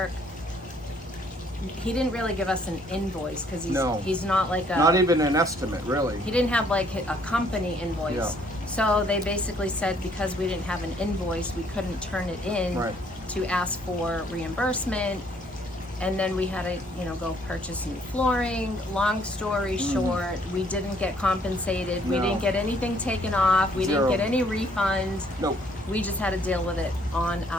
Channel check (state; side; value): normal; both; correlation 0.64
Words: He didn't really give us an invoice because he's not like not even an estimate, really. He didn't have like a company invoice. Yeah. So they basically said because we didn't have an invoice, we couldn't turn it in to ask for reimbursement. And then we had to, go purchase new flooring. Long story short, we didn't get compensated. No. We didn't get anything taken off. We Zero. didn't get any refunds. Nope. We just had to deal with it on